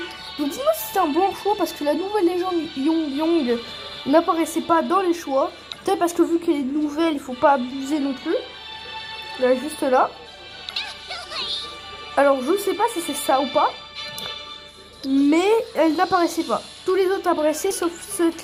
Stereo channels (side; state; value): both; identical; correlation 1.00